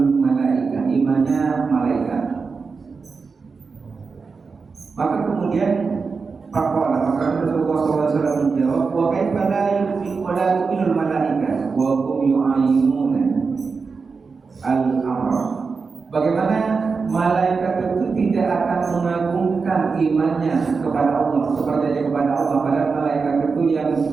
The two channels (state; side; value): quieter; left; 4.8 dB